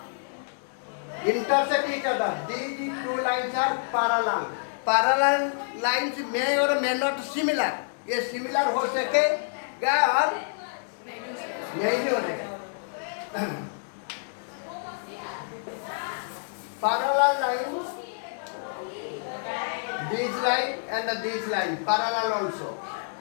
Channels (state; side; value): silent; right; digital silence